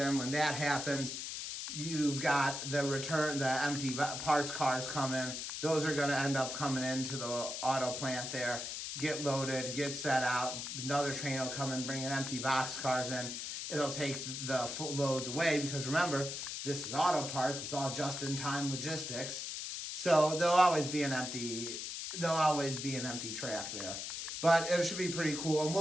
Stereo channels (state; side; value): noise; left; hiss, 5 dB below the sound